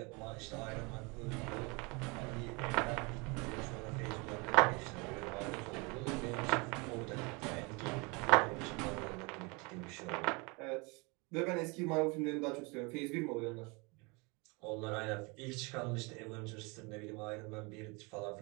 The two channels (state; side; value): quieter; left; 28.6 dB